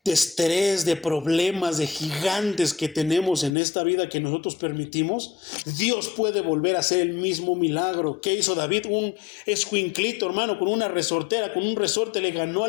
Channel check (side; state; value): right; drops out; at 3.5 s